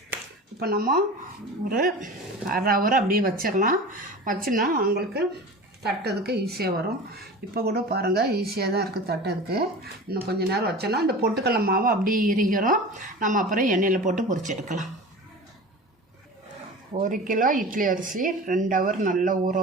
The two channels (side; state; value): both; normal; correlation 0.35